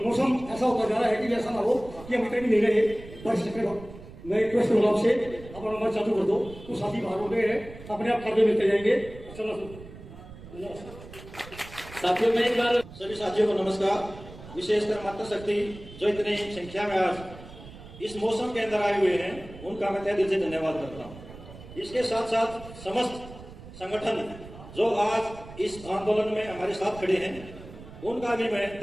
मौसम ऐसा होता जा रहा है कि ऐसा ना हो कि हम इतने भी नहीं रहे बारिश चक्कर। मैं रिक्वेस्ट करूंगा आपसे, अपना नंबर चालू कर दो, तो साथी बाहर हो गए हैं, अपने आप कार्य मिलते जाएंगे। साथियों में एक बार सभी साथियों को नमस्कार। विशेषकर मातृशक्ति जो इतनी संख्या में आज इस मौसम के अंदर आए हुए हैं, उनका मैं तहे दिल से धन्यवाद करता हूँ। इसके साथ साथ समस्त संगठन जो आज इस आंदोलन में हमारे साथ खड़े हैं, उनका भी मैं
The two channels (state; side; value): noise; right; rumble, 16 dB below the sound